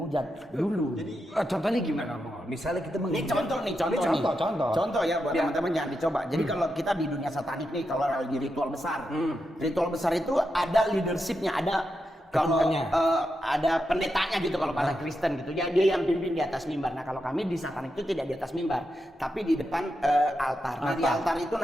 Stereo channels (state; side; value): normal; both; correlation 0.86